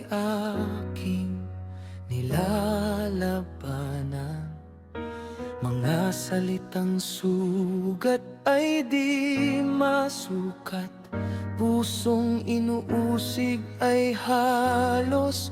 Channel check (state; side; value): identical; both; correlation 1.00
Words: aking nilalabanan. Mga salitang sugat ay di masukat, pusong inuusig ay